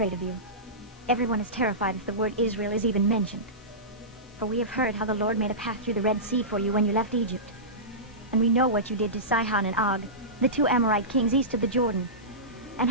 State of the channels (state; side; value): normal; both; correlation -0.19